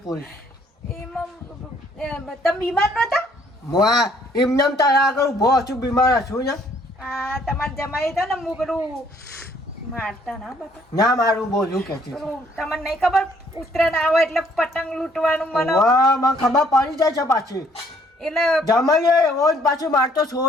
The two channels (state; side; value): normal; both; correlation 0.63